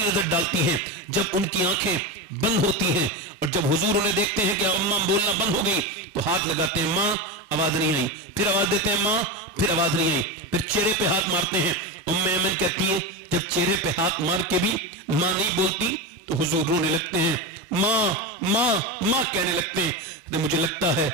ڈالتی ہیں, جب ان کی آنکھیں بند ہوتی ہیں اور جب حضور انہیں دیکھتے ہیں کہ اماں بولنا بند ہو گئی تو ہاتھ لگاتے ہیں, ماں آواز نہیں آئی, پھر آواز دیتے ہیں ماں, پھر آواز نہیں آئی, پھر چہرے پہ ہاتھ مارتے ہیں. ام ایمن کہتی ہے جب چہرے پہ ہاتھ مار کے بھی ماں نہیں بولتی تو حضور رونے لگتے ہیں, ماں ماں ماں کہنے لگتے ہیں. مجھے لگتا ہے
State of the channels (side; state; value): both; normal; correlation 0.17